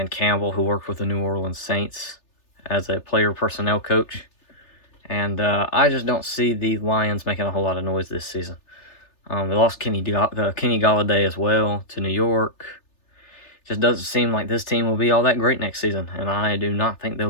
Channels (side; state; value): right; late; 3.3 ms